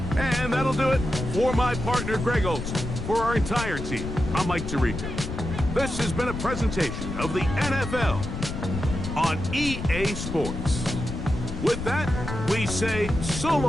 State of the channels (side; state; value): left; noise; rumble, 6 dB below the sound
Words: And that'll do it for my partner, Greg Olson. For our entire team, I'm Mike Tirico. This has been a presentation of the NFL on EA Sports. With that, we say so